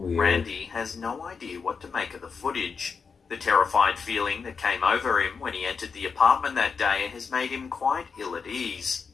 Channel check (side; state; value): right; quieter; 5.5 dB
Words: Randy has no idea what to make of the footage. The terrified feeling that came over him when he entered the apartment that day has made him quite ill at ease.